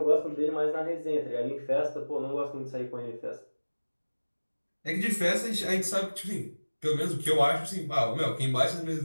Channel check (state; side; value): inverted; both; correlation -1.00